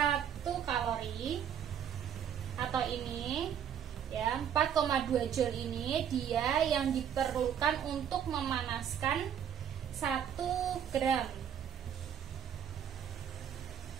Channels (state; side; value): quieter; left; 8.7 dB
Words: kalori atau ini ya 4,2 joule ini dia yang diperlukan untuk memanaskan 1 gram